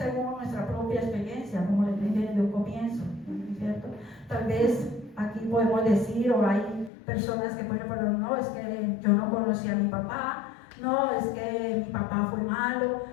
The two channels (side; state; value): right; drops out; at 6.9 s